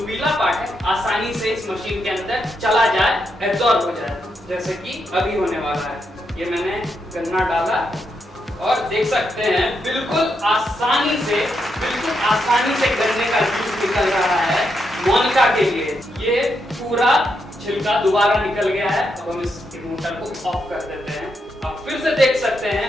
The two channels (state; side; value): normal; both; correlation 0.81